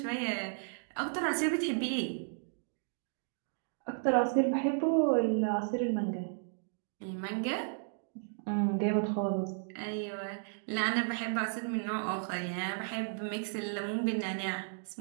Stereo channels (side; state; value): left; silent; digital silence